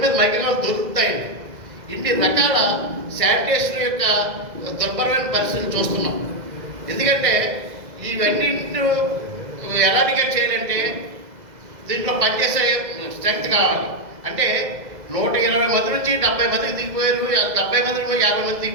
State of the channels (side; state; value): left; late; 2.0 ms